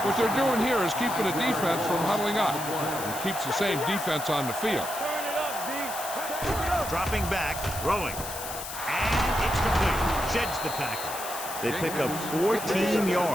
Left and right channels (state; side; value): noise; left; hiss, 9 dB below the sound